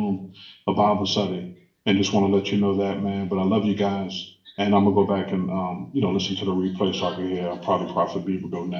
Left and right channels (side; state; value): both; identical; correlation 1.00